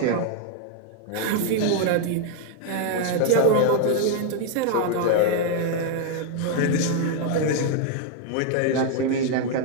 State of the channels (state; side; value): different; both; correlation 0.00